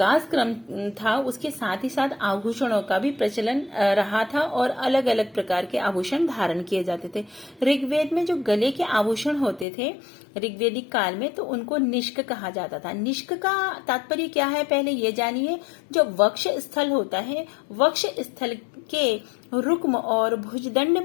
क्रम था उसके साथ ही साथ आभूषणों का भी प्रचलन रहा था और अलग अलग प्रकार के आभूषण धारण किए जाते थे। ऋग्वेद में जो गले के आभूषण होते थे ऋग्वेदिक काल में, तो उनको निष्क कहा जाता था। निष्क का तात्पर्य क्या है पहले ये जानिए। जो वक्ष स्थल होता है, वक्ष स्थल के रुक्म और भुजदंड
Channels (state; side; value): drops out; right; at 9.7 s